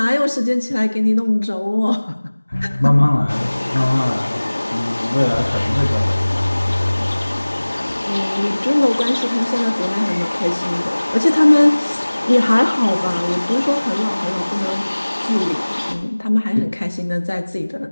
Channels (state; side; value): inverted; both; correlation -1.00